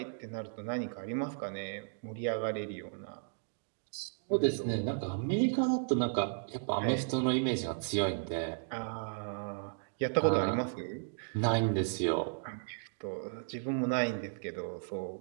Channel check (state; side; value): silent; left; digital silence